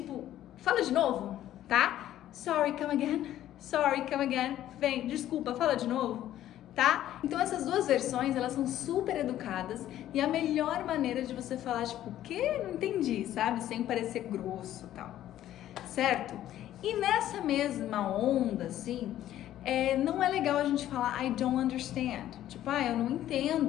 fala de novo, tá? Sorry, come again. Sorry, come again. Vem, desculpa, fala de novo, tá? Então essas duas versões, elas são super educadas e a melhor maneira de você falar, tipo, o quê? Não entendi, sabe? Sem parecer grosso e tal, certo? E nessa mesma onda, assim, não é legal a gente falar I don't understand. Tipo, eu não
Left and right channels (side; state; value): right; quieter; 12.6 dB